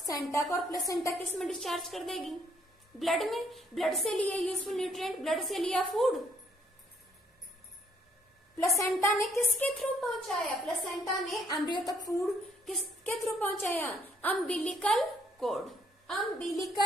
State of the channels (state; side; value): normal; both; correlation 0.67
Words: को, और प्लेसेंटा किस में डिस्चार्ज कर देगी, ब्लड में। ब्लड से लिए यूजफुल न्यूट्रिएंट, ब्लड से लिया फूड, प्लेसेंटा ने किसके थ्रू पहुंचाया, प्लेसेंटा ने एम्ब्रियो तक फूड किसके थ्रू पहुंचाया, umbilical cord,